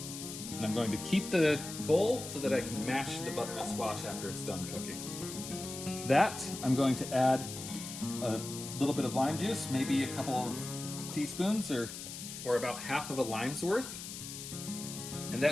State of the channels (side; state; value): left; noise; hiss, 9 dB below the sound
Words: And I'm going to keep the bowl so that I can mash the butternut squash after it's done cooking. To that, I'm going to add a little bit of lime juice, maybe a couple of teaspoons or about half of a lime's worth. And